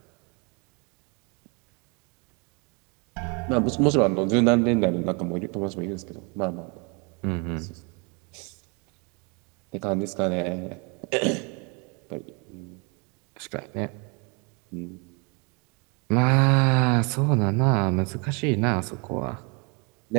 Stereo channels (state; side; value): quieter; left; 32.3 dB